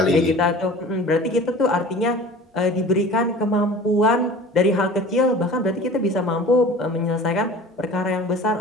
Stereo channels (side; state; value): both; normal; correlation 0.41